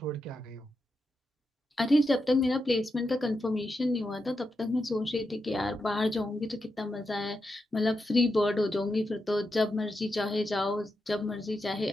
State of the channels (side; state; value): both; normal; correlation 0.86